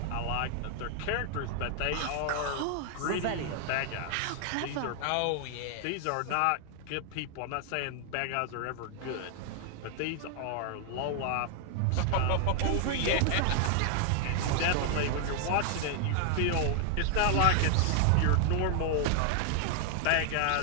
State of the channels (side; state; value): both; different; correlation 0.00